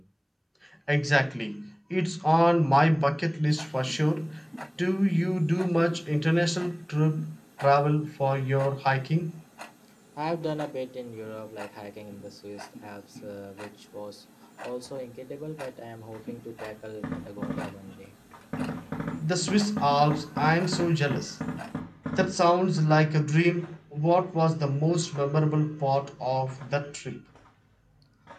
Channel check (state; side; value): identical; both; correlation 1.00